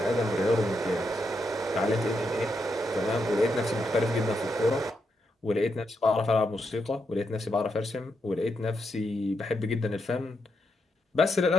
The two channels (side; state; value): both; normal; correlation 0.82